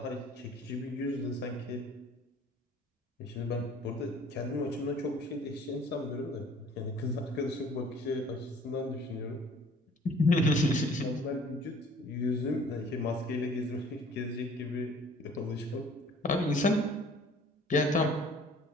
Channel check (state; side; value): normal; both; correlation 0.52